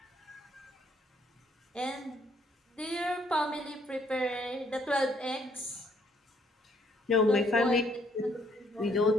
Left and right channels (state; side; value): normal; both; correlation 0.67